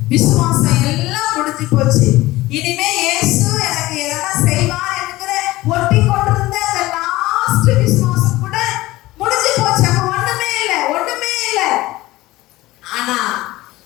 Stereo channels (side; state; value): right; quieter; 18.1 dB